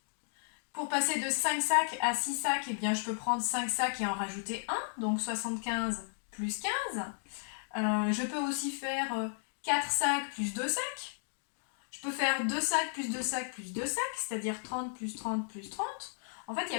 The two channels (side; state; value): right; silent; digital silence